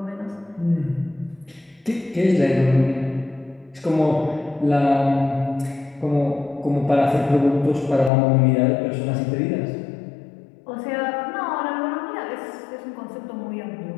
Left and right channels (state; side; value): drops out; right; at 8.1 s